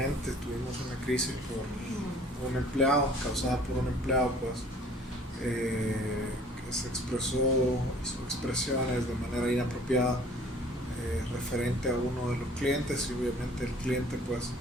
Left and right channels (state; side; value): normal; both; correlation 0.53